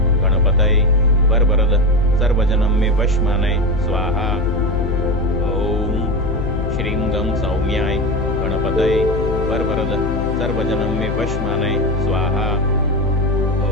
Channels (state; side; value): noise; left; hum, 4 dB below the sound